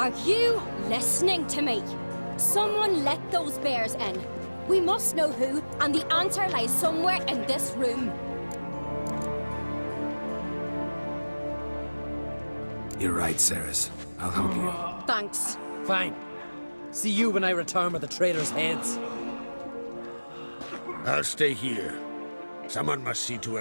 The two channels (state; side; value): inverted; both; correlation -1.00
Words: you listening to me? Someone let those bears in. We must know who, and the answer lies somewhere in this room. You're right, Ceres. I'll help you. Thanks. Fine. See you when I return with the traitors' heads. I'll stay here. Someone must see to